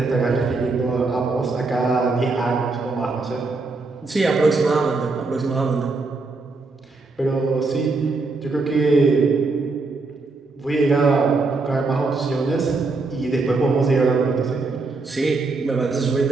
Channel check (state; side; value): quieter; left; 3.8 dB